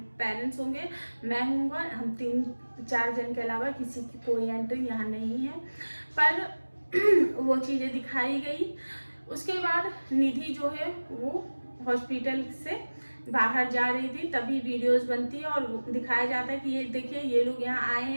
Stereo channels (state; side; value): inverted; both; correlation -1.00